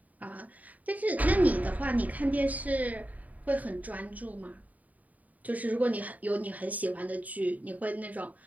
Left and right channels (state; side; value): late; left; 0.073 ms